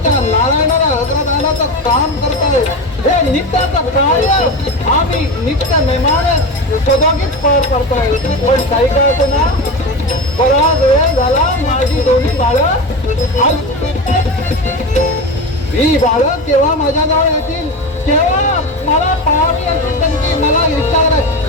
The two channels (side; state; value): both; normal; correlation 0.23